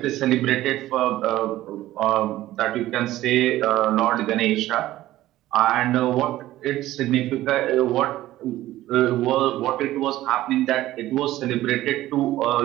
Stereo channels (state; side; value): quieter; left; 15.2 dB